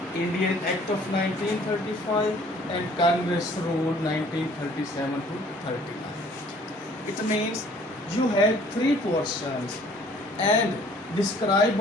Indian Act of 1935, and Congress Rule 1937 to 39. It means you had three portions and describe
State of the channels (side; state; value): both; normal; correlation 0.56